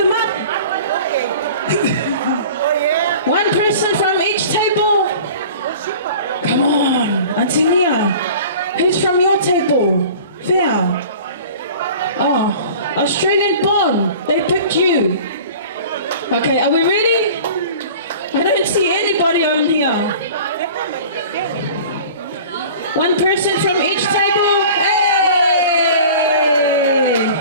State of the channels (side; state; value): both; inverted; correlation -0.42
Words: up. One person from each table. Come on, Antonia. Who's from your table? Fair. Oh, Australian born. They picked you. Okay, are we ready? I don't see anybody on here. One person from each table. Hey!